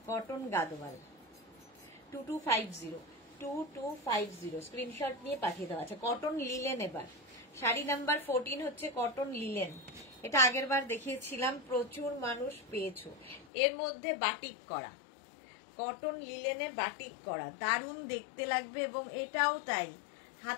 Cotton Gadwal 2250, screenshot নিয়ে পাঠিয়ে দেওয়া আছে। কটন লিলেন এবার শাড়ি নাম্বার 14 হচ্ছে কটন লিলেন। এটা আগের বার দেখিয়েছিলাম, প্রচুর মানুষ পেয়েছো। এর মধ্যে বাটিক করা, কটন লিলেনে বাটিক করা, দারুণ দেখতে লাগবে, এবং এটাও তাই,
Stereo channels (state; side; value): drops out; right; at 13.5 s